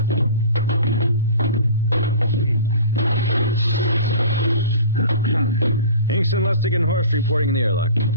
Hingston, Lustig, and Horst reporting in the airlock.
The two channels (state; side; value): inverted; both; correlation -0.39